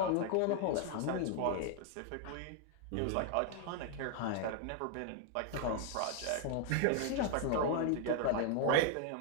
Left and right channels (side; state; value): both; different; correlation 0.00